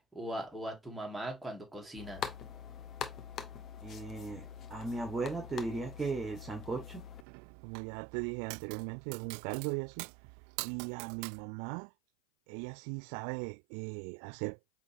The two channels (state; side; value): drops out; left; at 7.2 s